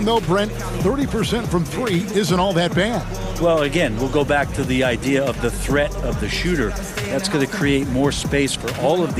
though, Brent, 30% from 3 isn't all that bad. Well, again, we'll go back to the idea of the threat of the shooter. That's going to create more space for all of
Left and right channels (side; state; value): both; identical; correlation 1.00